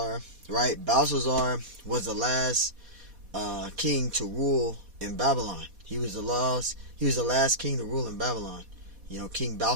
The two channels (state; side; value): late; left; 4.1 ms